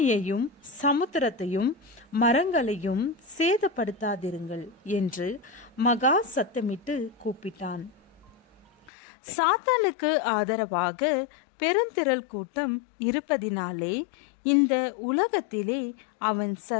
சமுத்திரத்தையும் மரங்களையும் சேதப்படுத்தாதிருங்கள் என்று மகா சத்தமிட்டு கூப்பிட்டான். சாத்தானுக்கு ஆதரவாக பெருந்திரள் கூட்டம் இருப்பதினாலே இந்த உலகத்திலே அவன்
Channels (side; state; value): right; drops out; at 8.7 s